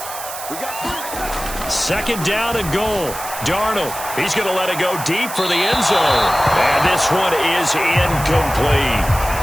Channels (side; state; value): right; noise; hiss, 10 dB below the sound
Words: 2nd down and goal. Darnold, he's going to let it go deep for the end zone. And this one is incomplete.